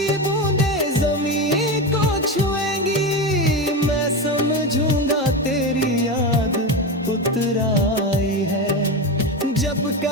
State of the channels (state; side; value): normal; both; correlation 0.18